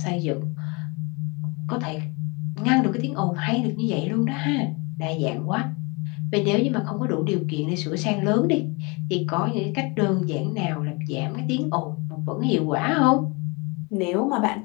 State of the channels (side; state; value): right; quieter; 28.9 dB